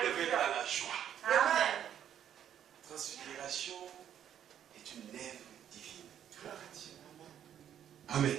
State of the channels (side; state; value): left; quieter; 9.8 dB